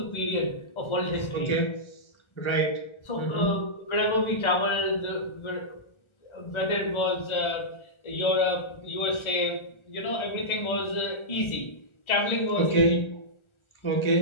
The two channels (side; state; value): right; late; 1.3 ms